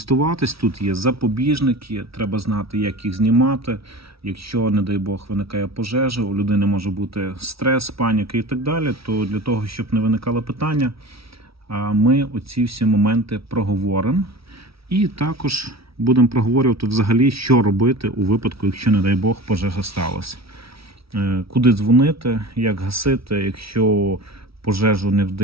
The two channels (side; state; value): left; late; 0.76 ms